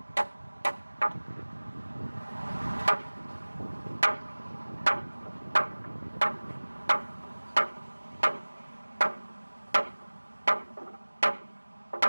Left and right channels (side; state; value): both; inverted; correlation -1.00